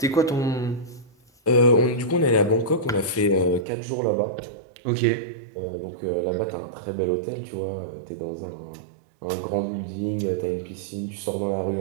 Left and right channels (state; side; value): drops out; left; at 3.7 s